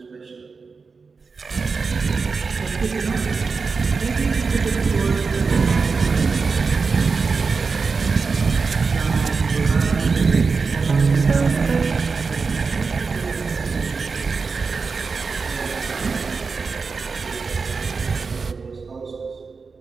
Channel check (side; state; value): left; quieter; 4.8 dB